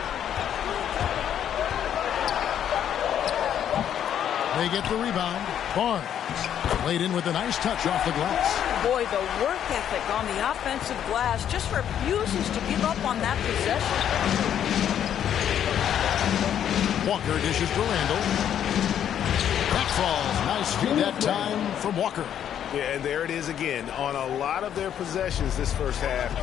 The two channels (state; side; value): quieter; right; 9.7 dB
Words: They get the rebound. Barnes laid in with a nice touch off the glass. Boy, the work ethic on the offensive glass just refuses to give up on that possession. Walker dishes to Randall. That falls. Nice feed that time from Walker. Yeah, and there it is again. On a lot of their possessions this first half,